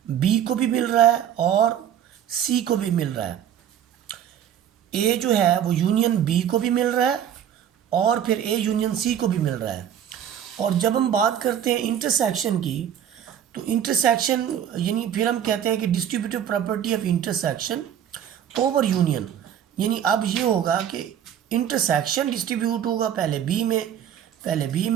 बी को भी मिल रहा है और सी को भी मिल रहा है। ए जो है वो यूनियन बी को भी मिल रहा है और फिर ए यूनियन सी को भी मिल रहा है। और जब हम बात करते हैं इंटरसेक्शन की, तो इंटरसेक्शन यानी फिर हम कहते हैं कि distributive property of intersection over union. यानी अब ये होगा कि इंटरसेक्शन डिस्ट्रीब्यूट होगा पहले बी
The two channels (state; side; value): quieter; left; 9.6 dB